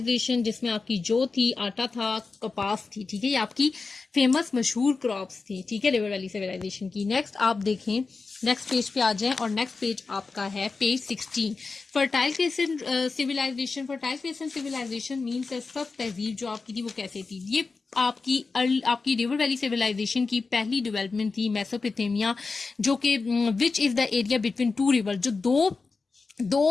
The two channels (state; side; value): quieter; right; 4.2 dB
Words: जिसमें आपकी जो थी आटा था, कपास थी, ठीक है, ये आपकी फेमस मशहूर क्रॉप्स थी, ठीक है, रिवर वैली सिविलाइजेशन की। नेक्स्ट आप देखें, नेक्स्ट पेज पे आ जाएं और नेक्स्ट पेज आपका है page 16, fertile crescent civilization. Fertile crescent civilization means सब तहजीब जो आपकी थी वो कैसे थी, ये आपकी रिवर वैली सिविलाइजेशन की पहली डेवलपमेंट थी मेसोपोटामिया, जो कि which is the area between two river, जो